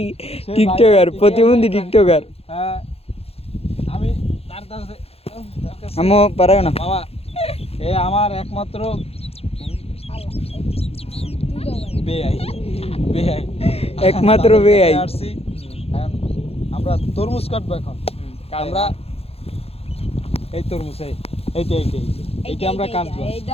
টিকটকার প্রতিবন্ধী টিকটকার। হ্যাঁ, আমি তার কাছে আমো পারাও না বাবা, এ আমার একমাত্র একমাত্র বেআই। আমরা তরমুজ কাটবো এখন। আমরা এই তরমুজ এইটা আমরা কাটবো।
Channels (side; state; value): right; late; 0.29 ms